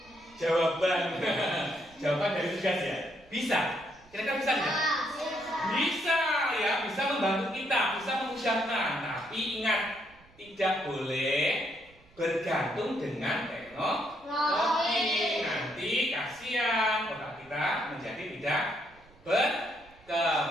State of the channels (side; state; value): right; noise; rumble, 27 dB below the sound